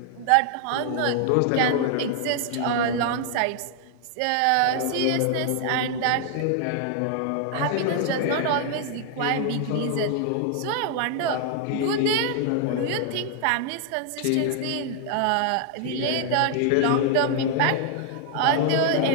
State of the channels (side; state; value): both; different; correlation 0.00